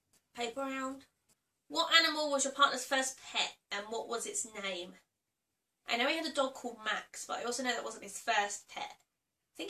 paper round. What animal was your partner's first pet and what was its name? I know he had a dog called Max, but I also know that wasn't his first pet. I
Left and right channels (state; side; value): identical; both; correlation 1.00